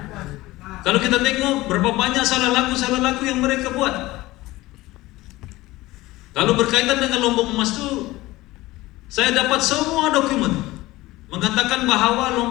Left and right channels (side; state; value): right; quieter; 18.7 dB